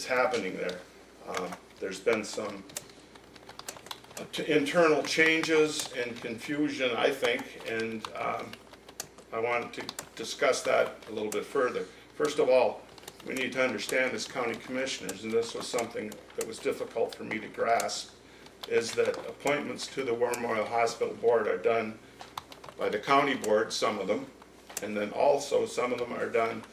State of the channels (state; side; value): identical; both; correlation 1.00